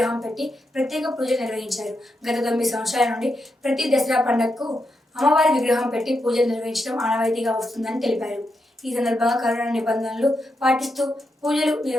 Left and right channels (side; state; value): both; normal; correlation 0.84